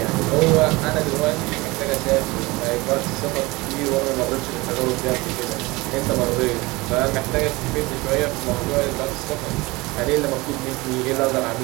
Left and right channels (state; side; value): quieter; left; 22.7 dB